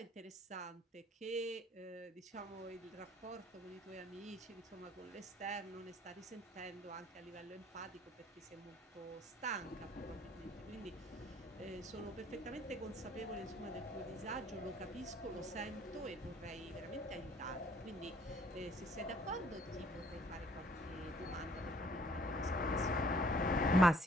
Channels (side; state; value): both; normal; correlation 0.60